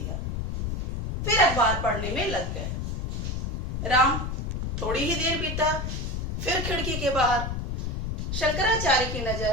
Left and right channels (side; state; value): left; noise; rumble, 3 dB below the sound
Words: फिर अखबार पढ़ने में लग गए। राम थोड़ी ही देर बीता। फिर खिड़की के बाहर। शंकराचार्य की